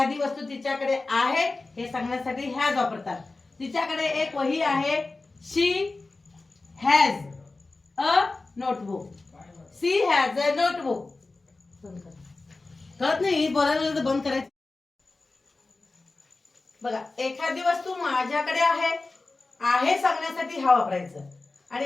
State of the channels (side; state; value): right; quieter; 3.4 dB